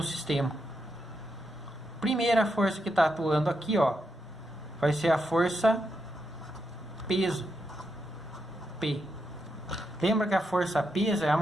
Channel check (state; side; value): normal; both; correlation 0.83